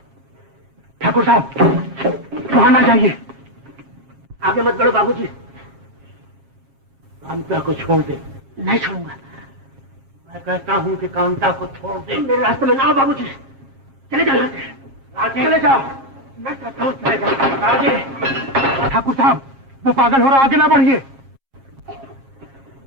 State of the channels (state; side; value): late; left; 7.4 ms